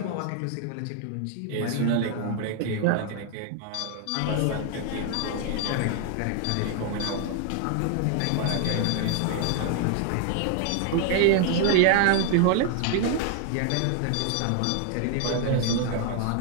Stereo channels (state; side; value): different; both; correlation 0.00